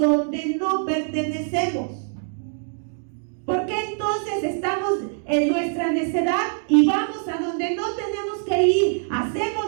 no pertenecemos? ¿Por qué entonces estamos en nuestra necedad y vamos a donde no tenemos que ir? Hacemos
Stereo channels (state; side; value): silent; left; 63 dB below the other